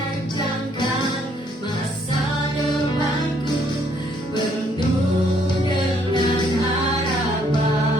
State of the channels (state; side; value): normal; both; correlation 0.67